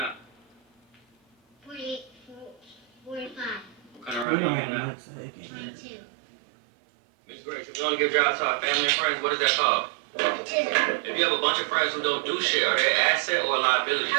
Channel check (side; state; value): left; drops out; at 4.2 s